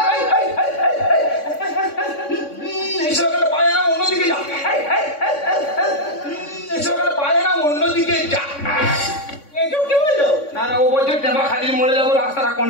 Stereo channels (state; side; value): late; right; 3.6 ms